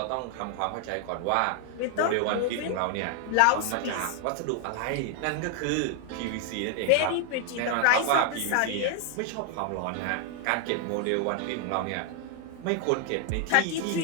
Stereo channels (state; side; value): different; both; correlation 0.00